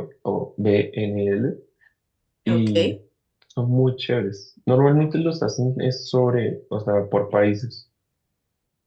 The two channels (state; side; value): identical; both; correlation 1.00